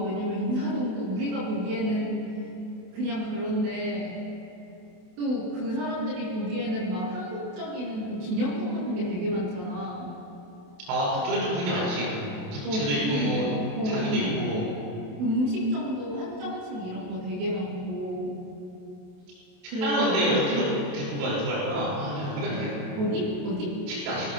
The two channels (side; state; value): left; late; 28 ms